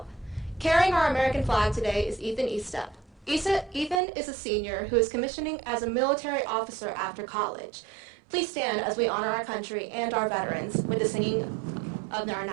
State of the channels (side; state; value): left; drops out; at 4.0 s